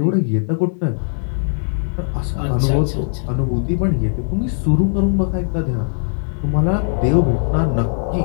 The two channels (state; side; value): silent; right; 66 dB below the other